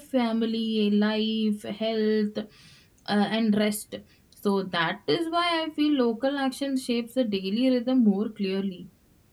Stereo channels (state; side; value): identical; both; correlation 1.00